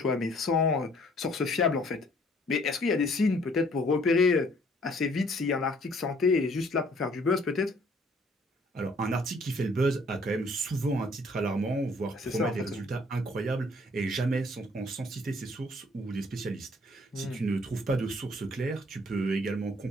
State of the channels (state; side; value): normal; both; correlation 0.60